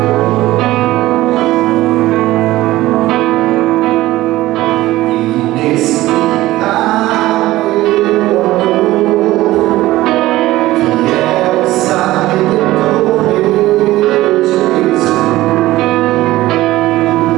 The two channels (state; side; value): quieter; left; 16.8 dB